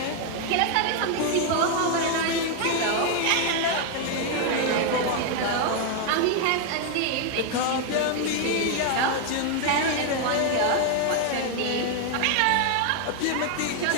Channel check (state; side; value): different; both; correlation 0.01